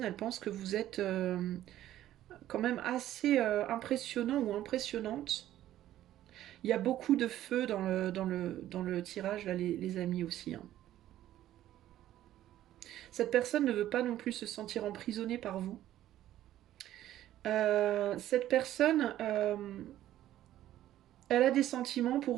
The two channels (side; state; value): left; quieter; 13.1 dB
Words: elle pense que vous êtes quand même assez impressionnant ou impressionnante. Il y a beaucoup de feu dans le tirage, là, les amis aussi, hein. Cette personne ne veut pas non plus se sentir emprisonnée par vous. Cette personne, elle a des sentiments pour